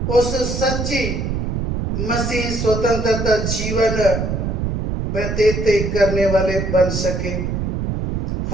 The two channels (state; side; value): noise; right; rumble, 2 dB below the sound